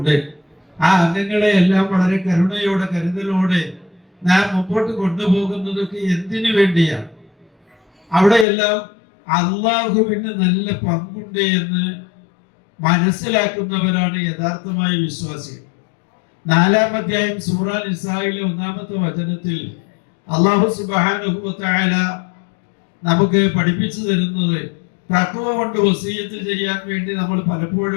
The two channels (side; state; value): right; drops out; at 8.5 s